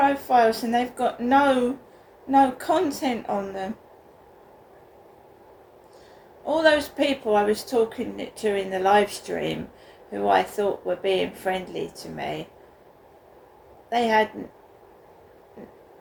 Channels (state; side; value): identical; both; correlation 1.00